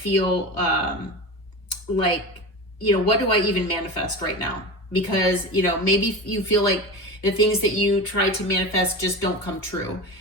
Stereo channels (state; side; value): late; right; 2.7 ms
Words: like, you know, what do I even manifest right now? Because, you know, maybe you feel like the things that you try to manifest just don't come true,